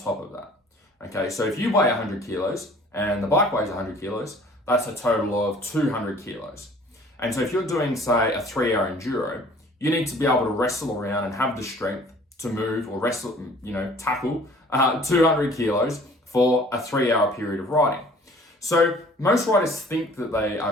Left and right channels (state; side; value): normal; both; correlation 0.52